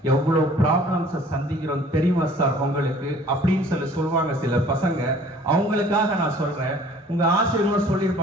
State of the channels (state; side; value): normal; both; correlation 0.52